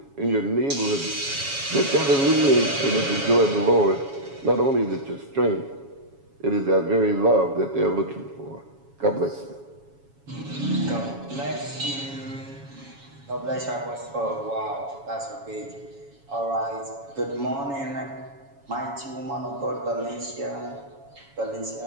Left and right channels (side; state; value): left; late; 7.2 ms